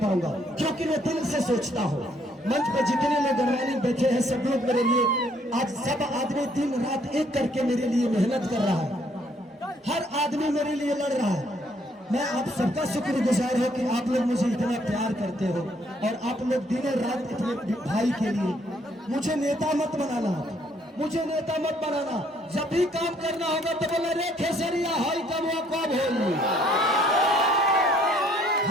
पाऊंगा, क्योंकि मैं दिल से सोचता हूँ। मंच पर जितने लोग गणमान्य बैठे हैं, सब लोग मेरे लिए, आज सब आदमी दिन रात एक करके मेरे लिए मेहनत कर रहा है, हर आदमी मेरे लिए लड़ रहा है। मैं आप सबका शुक्रगुजार हूं कि आप लोग मुझे इतना प्यार करते हो और आप लोग दिन रात अपने भाई के लिए। मुझे नेता मत बनाना, मुझे नेता मत बनाना। जब भी काम करना होगा तो बोला रे खेसरिया हाई कब होगी,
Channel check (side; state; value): both; normal; correlation 0.66